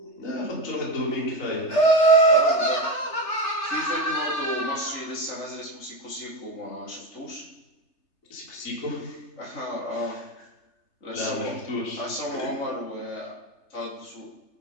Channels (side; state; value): right; late; 3.3 ms